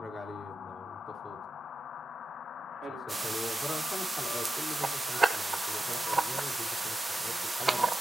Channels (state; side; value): normal; both; correlation 0.90